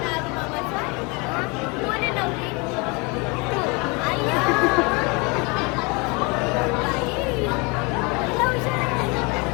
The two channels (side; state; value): right; quieter; 29.0 dB